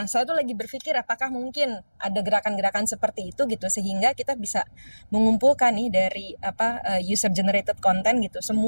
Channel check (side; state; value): both; inverted; correlation -1.00